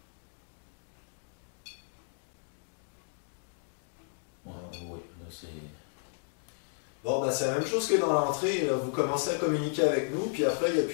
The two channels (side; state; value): right; silent; digital silence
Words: Oui, là c'est... Bon, ben c'est la même chose que dans l'entrée, là. Vous commencez à communiquer avec nous, puis après, il n'y a